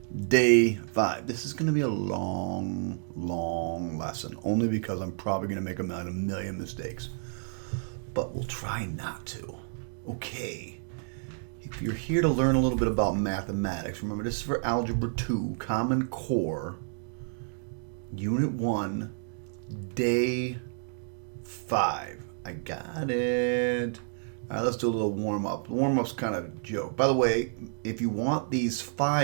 Day 5. This is going to be a long lesson, only because I'm probably going to make a million mistakes. But we'll try not to. Okay. If you're here to learn a little bit about mathematics, remember this is for Algebra 2, Common Core, Unit 1, Day 5. I got it. All right, let's do a little warm-up. The warm-up's kind of a joke. By the way, if you want these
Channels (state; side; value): silent; left; digital silence